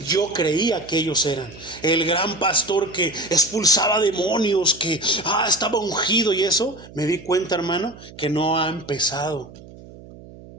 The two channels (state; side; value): noise; right; hum, 19 dB below the sound